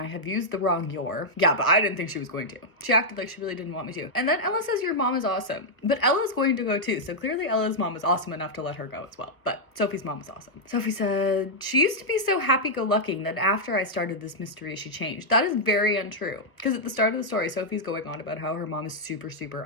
have used the wrong your. Yeah, but I didn't think she was going to. She acted like she really didn't want me to. And then Ella says your mom is awesome. But Ella's going to go too. So clearly Ella's mom is awesome enough to let her go as well. But Sophie's mom is awesome. Sophie said, she used to be so happy-go-lucky that after I started this mystery, she changed. That is very untrue. Because at the start of the story, Sophie's going on about how her mom is super, super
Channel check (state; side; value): late; right; 1.2 ms